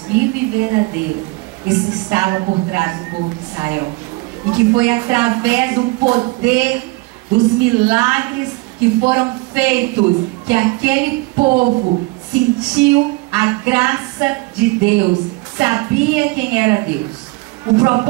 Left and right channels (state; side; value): quieter; left; 24.0 dB